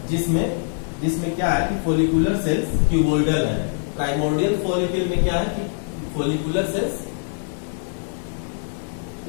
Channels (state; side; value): silent; right; 63 dB below the other